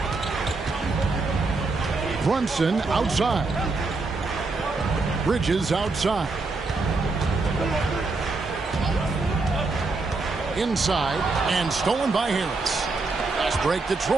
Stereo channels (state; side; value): quieter; left; 3.7 dB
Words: Brunson outside. Bridges outside. Inside and stolen by Harris. Fast break